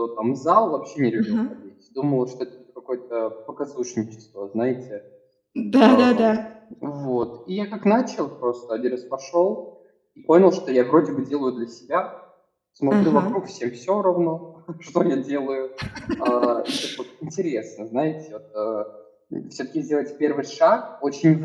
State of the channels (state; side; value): identical; both; correlation 1.00